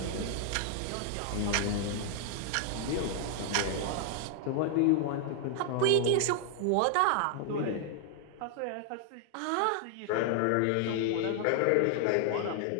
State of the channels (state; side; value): different; both; correlation 0.00